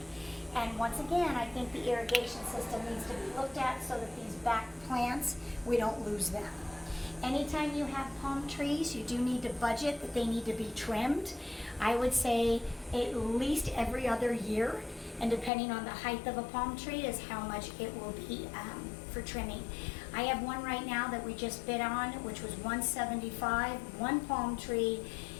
And once again, I think the irrigation system needs to be looked at so that these back plants, we don't lose them. Anytime you have palm trees, you do need to budget that they need to be trimmed. I would say at least every other year, and depending on the height of a palm tree is how much it will be for trimming. I have one right now that we just bid on, which was $175, one palm tree,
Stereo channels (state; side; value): drops out; right; at 15.5 s